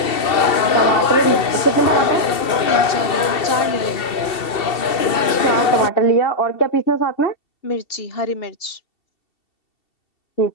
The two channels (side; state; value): right; late; 2.7 ms